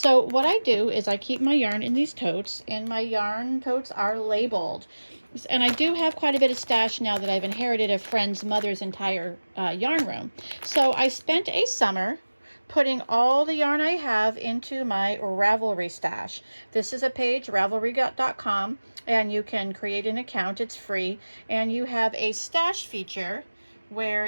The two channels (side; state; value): both; inverted; correlation -1.00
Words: what I do is I keep my yarn in these totes, and my yarn totes are labeled. And I do have quite a bit of stash now that I've inherited a friend's mother's entire yarn room. So I spent a summer putting all the yarn I have into my Ravelry stash. This is a page, ravelry.com, and you can create an account. It's free. And you have a stash feature where